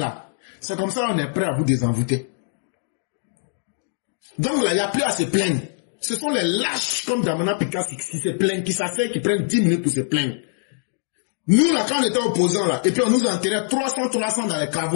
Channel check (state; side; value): silent; right; digital silence